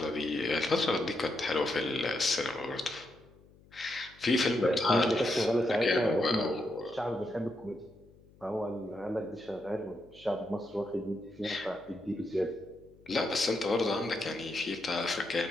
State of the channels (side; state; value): left; noise; hum, 26 dB below the sound